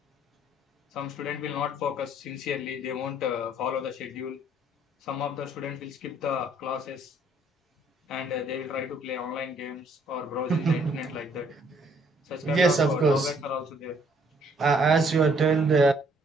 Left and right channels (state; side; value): normal; both; correlation 0.64